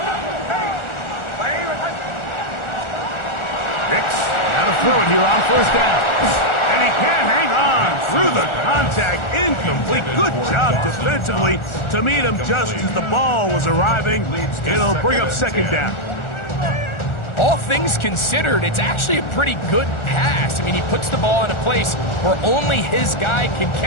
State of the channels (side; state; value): right; late; 1.4 ms